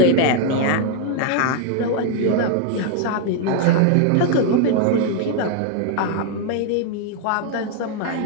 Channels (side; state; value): both; different; correlation 0.00